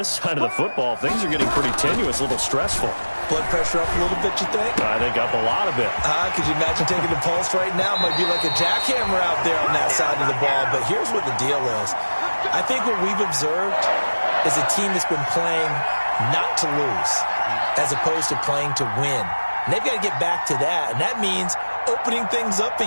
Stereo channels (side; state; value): both; inverted; correlation -1.00